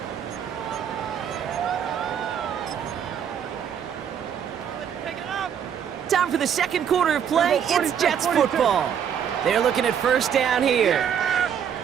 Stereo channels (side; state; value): left; quieter; 8.4 dB